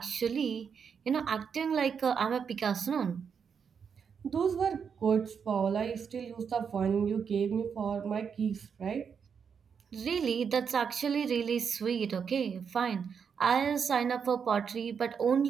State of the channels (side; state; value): left; quieter; 6.7 dB